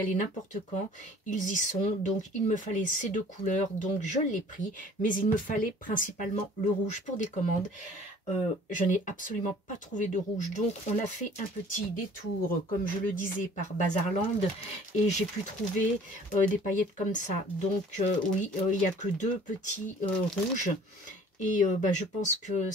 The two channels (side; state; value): both; normal; correlation 0.51